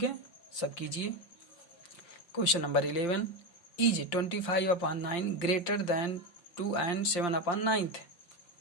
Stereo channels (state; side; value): late; right; 5.8 ms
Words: है, सब कीजिए। Question number 11, is 25/9 greater than 2 and 7/9।